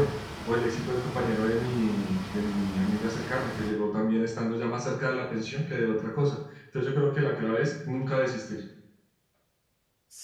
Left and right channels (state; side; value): identical; both; correlation 1.00